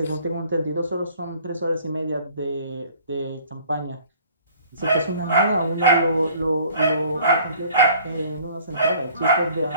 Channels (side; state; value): both; inverted; correlation -0.53